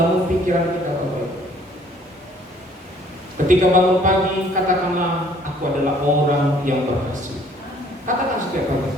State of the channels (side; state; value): both; normal; correlation 0.58